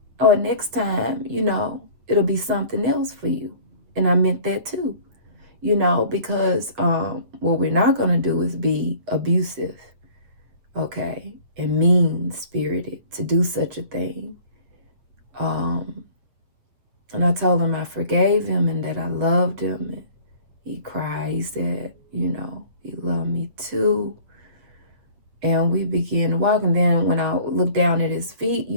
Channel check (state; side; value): late; left; 8.2 ms